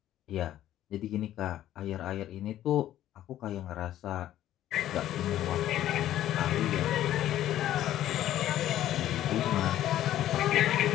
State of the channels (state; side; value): quieter; right; 12.7 dB